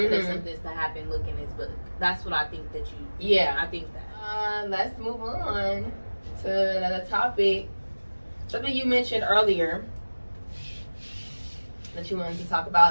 that something's to happen. Look in this book. That's what I think that you. Yeah, I think that. Let's move on to another topic. Something you mentioned earlier that you wanted to talk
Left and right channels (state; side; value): inverted; both; correlation -1.00